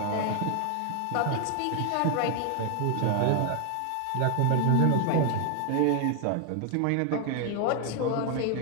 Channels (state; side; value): different; both; correlation 0.00